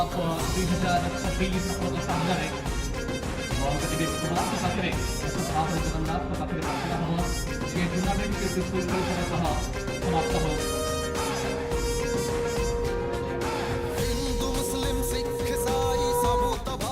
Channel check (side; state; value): both; identical; correlation 1.00